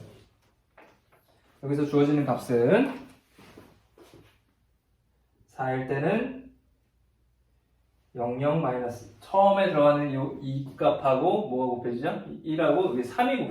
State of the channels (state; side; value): identical; both; correlation 1.00